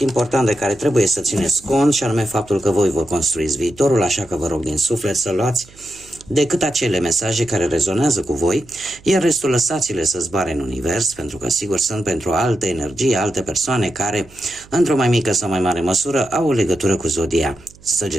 important de care trebuie să țineți cont, și anume faptul că voi vă construiți viitorul, așa că vă rog din suflet să luați decât acele mesaje care rezonează cu voi, iar restul lăsați-le să zboare în univers, pentru că sigur sunt pentru alte energii, alte persoane care, într-o mai mică sau mai mare măsură, au o legătură cu Zodia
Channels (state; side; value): noise; right; hum, 24 dB below the sound